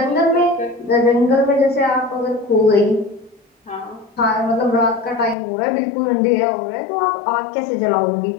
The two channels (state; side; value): drops out; right; at 5.4 s